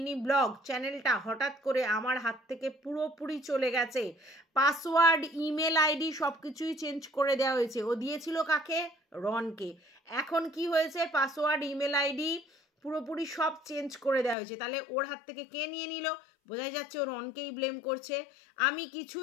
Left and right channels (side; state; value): right; drops out; at 14.4 s